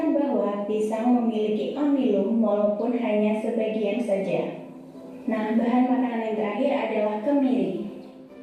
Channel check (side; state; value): both; identical; correlation 1.00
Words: bahwa pisang memiliki amilum walaupun hanya sebagian saja. Nah, bahan makanan yang terakhir adalah kemiri.